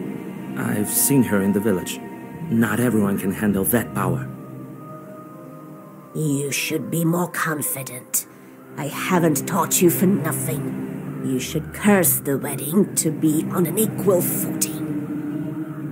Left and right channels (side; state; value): both; identical; correlation 1.00